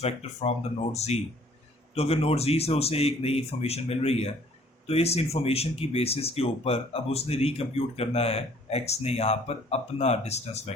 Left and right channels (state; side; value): normal; both; correlation 0.57